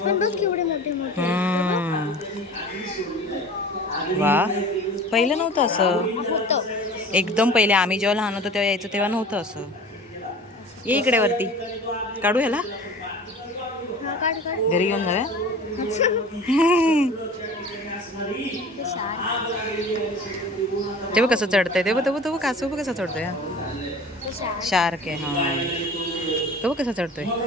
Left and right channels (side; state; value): both; normal; correlation 0.41